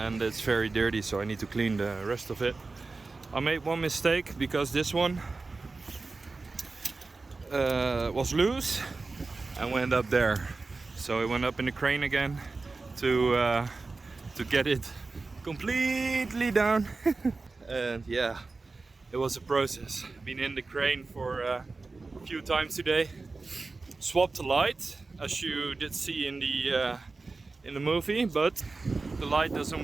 and it's very dirty, so I need to clean the rest of it. I made one mistake because this one was loose and went up there, so I went up in the crane again to get it completely down. And yeah, it was a process. Been in the crane for a few times today. Swapped the light, as you did see in the movie, but the light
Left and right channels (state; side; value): quieter; left; 3.8 dB